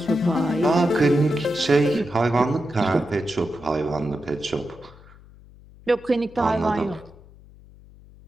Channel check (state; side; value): noise; left; hum, 23 dB below the sound